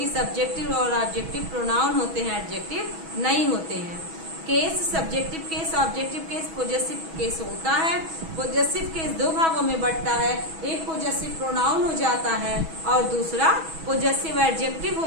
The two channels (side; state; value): left; late; 6.2 ms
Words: सब्जेक्टिव और ऑब्जेक्टिव प्रोनाउन होते हैं, एडजेक्टिव नहीं होते हैं। Case subjective case, objective case, possessive case होता है। पोजेसिव केस दो भागों में बंटता है, एक पोजेसिव प्रोनाउन हो जाता है और दूसरा पोजेसिव एडजेक्टिव हो